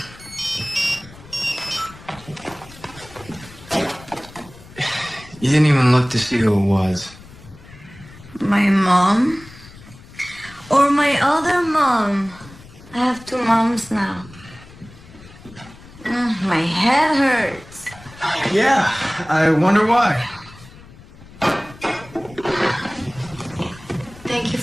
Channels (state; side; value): noise; left; rumble, 20 dB below the sound